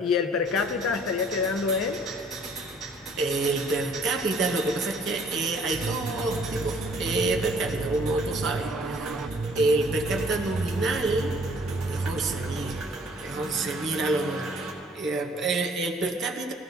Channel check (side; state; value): both; normal; correlation 0.58